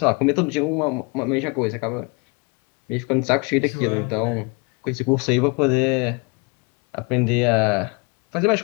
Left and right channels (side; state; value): right; quieter; 31.4 dB